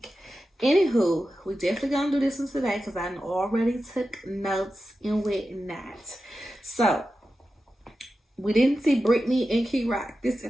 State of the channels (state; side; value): normal; both; correlation 0.92